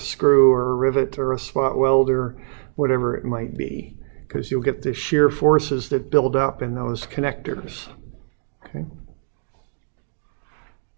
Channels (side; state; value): left; silent; digital silence